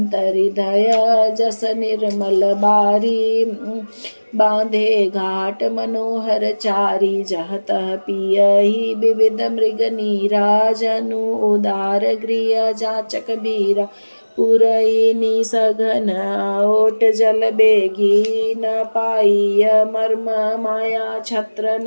हृदय जस निर्मल बारी बांधे घाट मनोहर चारी जहत पियहि विविध मृग नीरा जनु उदार गृह जाचक बीरा पुरई सघन ओट जल बेगी न पाइय मर्म माया छत्र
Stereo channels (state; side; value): inverted; both; correlation -1.00